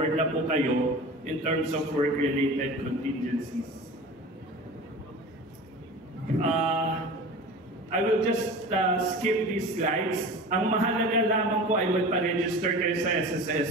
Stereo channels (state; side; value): normal; both; correlation 0.35